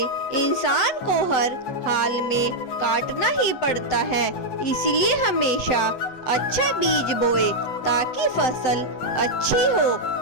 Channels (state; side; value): late; right; 8.2 ms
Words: इंसान को हर हाल में काटना ही पड़ता है। इसलिए हमेशा अच्छा बीज बोए ताकि फसल अच्छी हो।